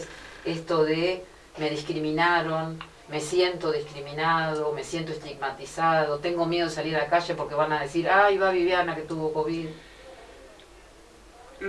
esto de me discriminaron, me siento discriminado, me siento estigmatizado, tengo miedo de salir a la calle porque van a decir, ay, va Viviana que tuvo COVID?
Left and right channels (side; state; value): both; identical; correlation 1.00